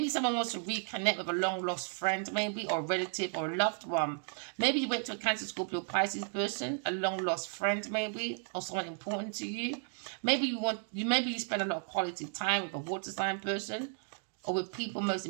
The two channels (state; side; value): silent; left; 55 dB below the other